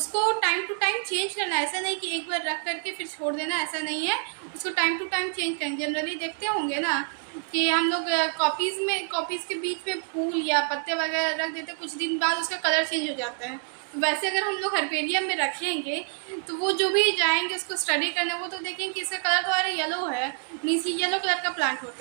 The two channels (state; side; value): silent; left; 56 dB below the other